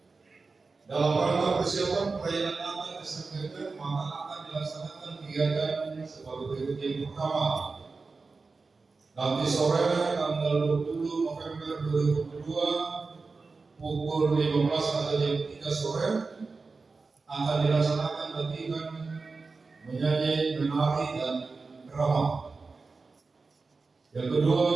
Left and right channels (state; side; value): quieter; left; 4.1 dB